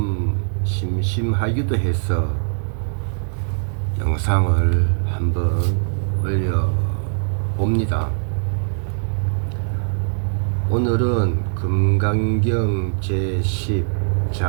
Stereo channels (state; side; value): silent; left; 65 dB below the other